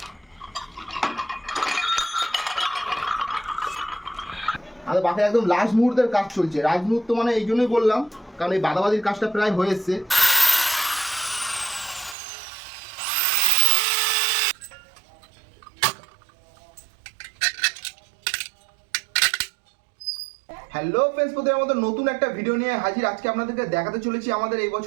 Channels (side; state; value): left; drops out; at 12.2 s